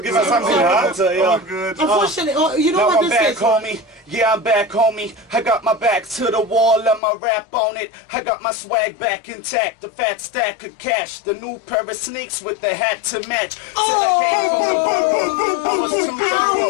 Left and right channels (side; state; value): right; drops out; at 7.0 s